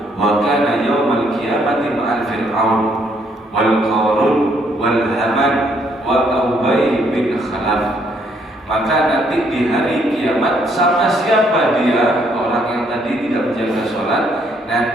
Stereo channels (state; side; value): normal; both; correlation 0.69